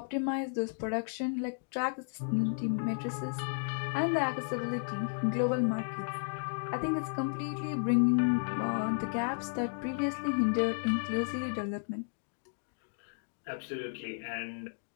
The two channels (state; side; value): silent; right; digital silence